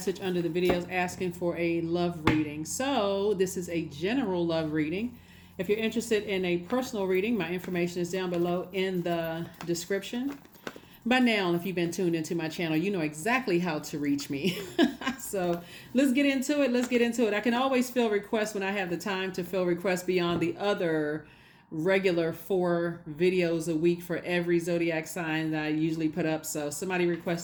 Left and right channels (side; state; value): both; identical; correlation 1.00